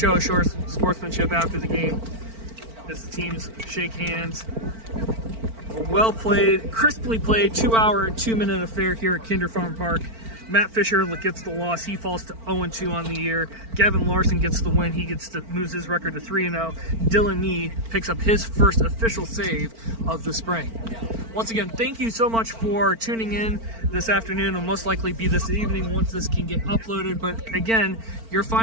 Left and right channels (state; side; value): late; left; 4.4 ms